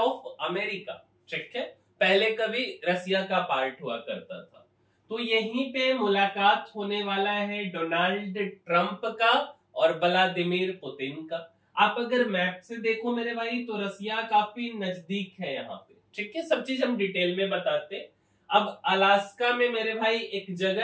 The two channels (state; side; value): identical; both; correlation 1.00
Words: America, ठीक है। पहले कभी रसिया का पार्ट हुआ करता था। तो यहीं पे मुलाकात होने वाला है डोनाल्ड ट्रंप का और व्लादिमीर पुतिन का। आप अगर मैप से देखो मेरे भाई, तो रसिया काफी नजदीक है यहाँ पे, ठीक है। सब चीज हम डिटेल में बताते। अब अलास्का में मेरे भाई एक